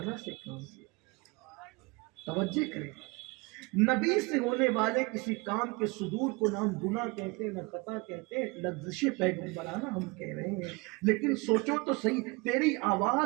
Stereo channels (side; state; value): left; quieter; 26.8 dB